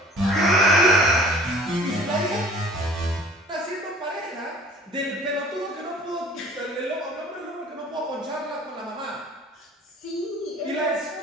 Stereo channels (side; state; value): both; normal; correlation 0.49